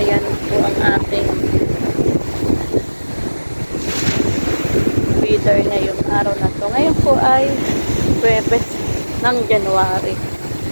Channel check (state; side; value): inverted; both; correlation -1.00